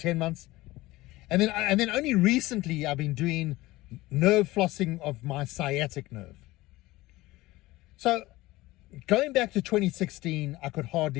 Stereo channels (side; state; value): right; quieter; 18.9 dB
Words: months. And then only recently I've been doing nerve flossing of my sciatic nerve. So going back to 2016, I could